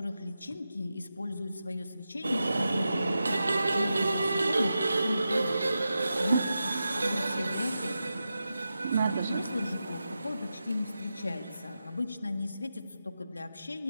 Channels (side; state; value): both; inverted; correlation -0.90